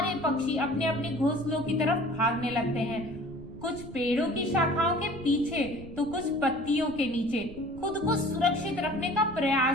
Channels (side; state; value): right; noise; rumble, 16 dB below the sound